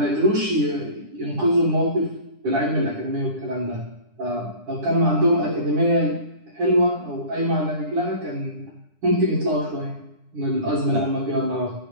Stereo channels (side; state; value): left; late; 10 ms